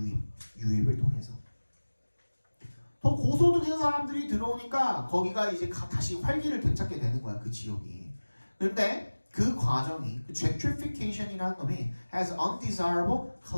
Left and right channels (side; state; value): both; inverted; correlation -1.00